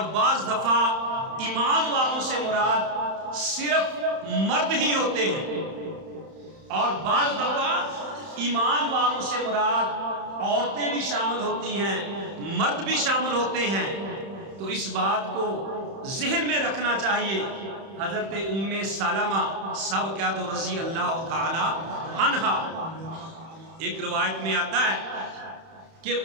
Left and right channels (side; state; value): left; late; 31 ms